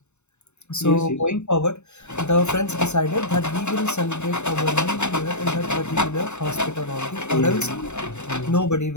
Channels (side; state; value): right; late; 0.82 ms